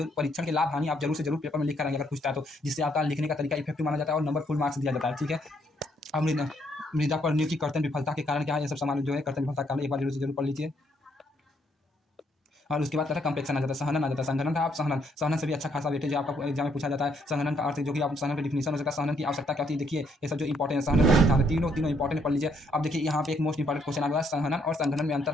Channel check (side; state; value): both; normal; correlation 0.71